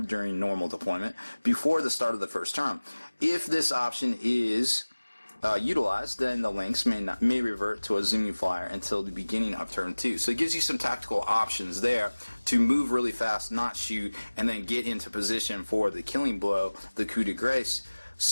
during normal deployment before the start of the first turn. If this option is utilized, then the links may revert to a zooming flyer until the beginning of turn 2. So it gives you some tactical options there to move really fast, not shoot, and then get into position for the killing blow, the coup de grace,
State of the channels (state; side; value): inverted; both; correlation -1.00